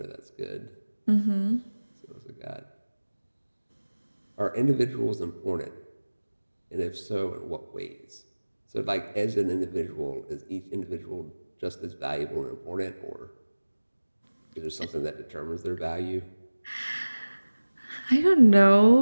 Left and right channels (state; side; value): inverted; both; correlation -1.00